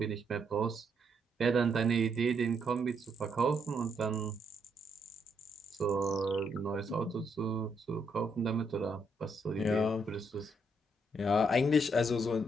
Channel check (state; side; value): normal; both; correlation 0.75